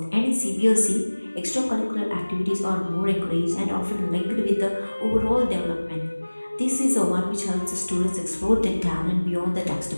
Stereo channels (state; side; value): inverted; both; correlation -1.00